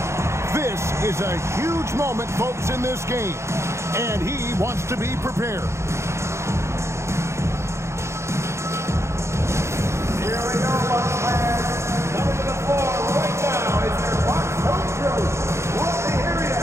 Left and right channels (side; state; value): left; late; 0.13 ms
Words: This is a huge moment, folks, in this game. And he wants to be prepared. Here we go, Bucks fans. Coming to the floor right now is your Bucks home crew. Let me hear